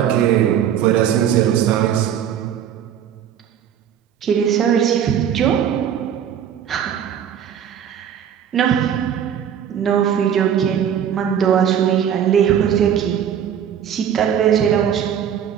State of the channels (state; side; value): quieter; left; 9.2 dB